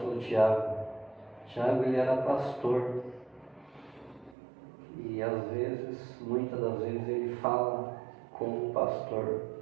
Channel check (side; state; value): left; drops out; at 4.4 s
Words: Tiago. Tiago, ele era pastor. E às vezes, muitas das vezes, ele fala como pastor.